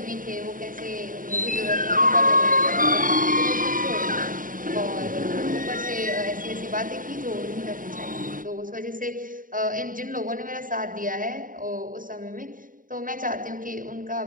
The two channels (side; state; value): left; late; 0.40 ms